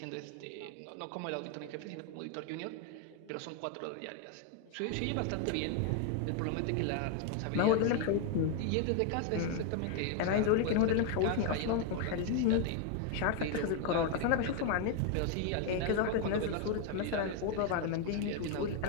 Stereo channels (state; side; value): different; both; correlation 0.01